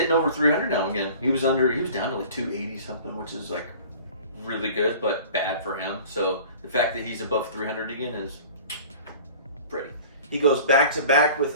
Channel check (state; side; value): inverted; both; correlation -0.43